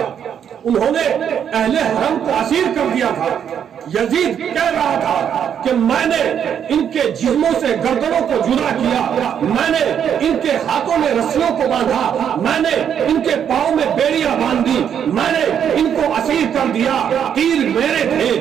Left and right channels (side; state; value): left; quieter; 8.5 dB